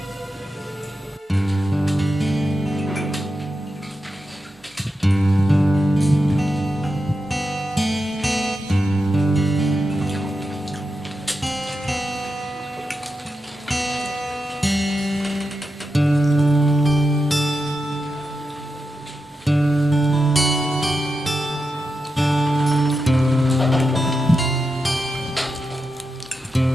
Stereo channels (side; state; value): both; normal; correlation 0.88